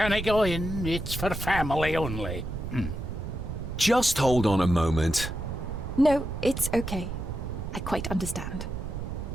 go in. It's for family only. Just hold on a moment. No, it's okay. I quite understand.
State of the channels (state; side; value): noise; right; rumble, 6 dB below the sound